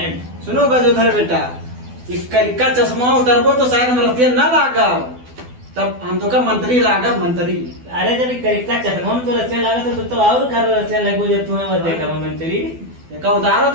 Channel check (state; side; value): late; left; 12 ms